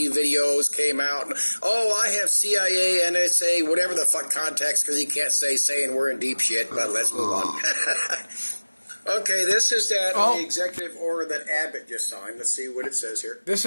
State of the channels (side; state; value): both; inverted; correlation -1.00